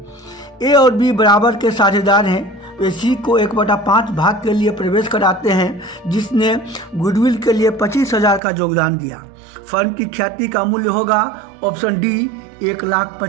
ए और बी बराबर के साझेदार हैं. वे सी को 1/5 भाग के लिए प्रवेश कराते हैं, जिसने गुडविल के लिए 25,000 का योगदान दिया. फर्म की ख्याति का मूल्य होगा option D,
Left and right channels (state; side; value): drops out; left; at 8.4 s